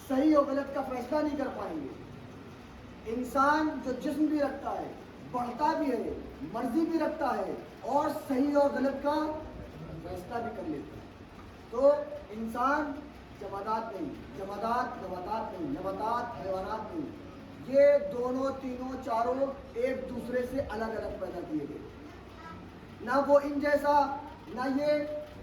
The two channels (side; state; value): both; identical; correlation 1.00